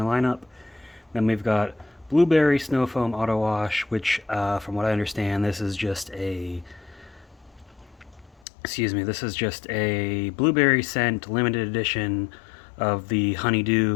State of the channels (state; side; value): drops out; right; at 8.4 s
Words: lineup. Then we've got Blueberry Snow Foam Auto Wash, which, from what I understand, this is just a blueberry scent limited edition of the